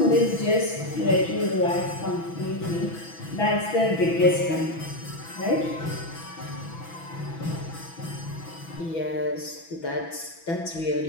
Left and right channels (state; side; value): late; right; 6.1 ms